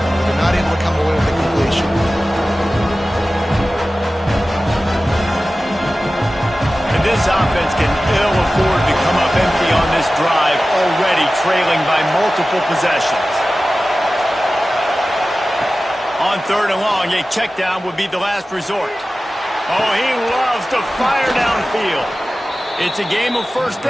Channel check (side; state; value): both; normal; correlation 0.96